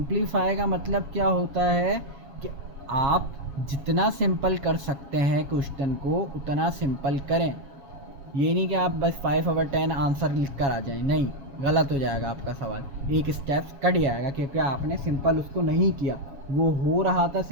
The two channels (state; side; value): late; left; 7.2 ms